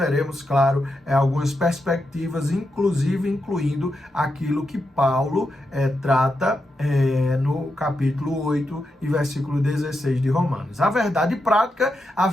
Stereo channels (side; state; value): both; normal; correlation 0.86